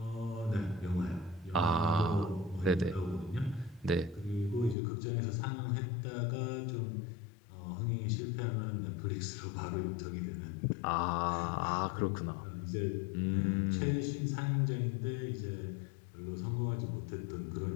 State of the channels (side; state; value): right; drops out; at 4.8 s